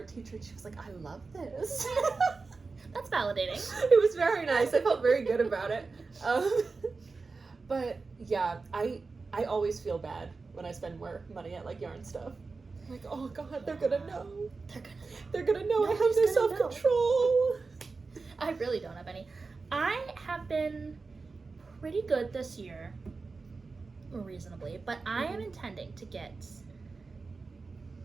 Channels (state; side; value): quieter; left; 4.2 dB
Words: teacher, and she was like, I love this. That's validating. It was very nice. I felt very good about it. But yeah, I always feel bad when I spend more money at like yarn stuff. I'm like, oh God, they're gonna know. They're gonna know I have no self-control. I really don't have any. I have been pretty good this year, reasonably, but I am intending to get